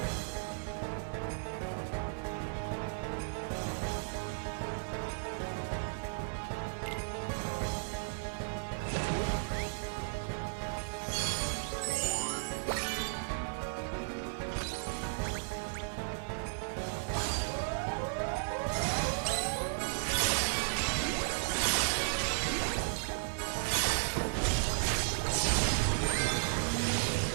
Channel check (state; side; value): silent; left; digital silence